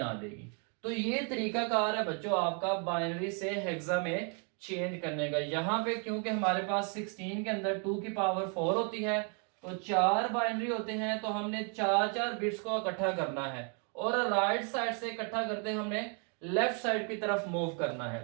जाएगी। तो ये तरीकाकार है बच्चों आपका बाइनरी से हेक्सा में चेंज करने का। यहाँ पे क्योंकि हमारे पास 16 के अंदर 2 की पावर 4 होती है, तो 4 बाइनरी होते हैं, तो हमने 4 बिट्स को इकट्ठा करना है, और राइट साइड से इकट्ठा करते हमने लेफ्ट साइड की तरफ मूव करना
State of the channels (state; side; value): quieter; left; 39.9 dB